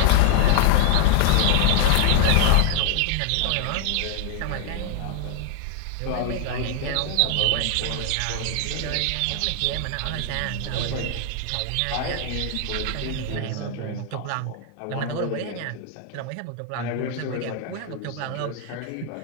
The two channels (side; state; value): both; different; correlation 0.00